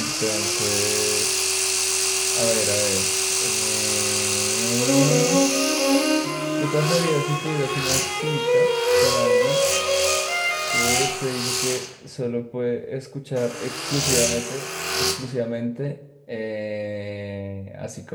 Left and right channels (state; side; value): identical; both; correlation 1.00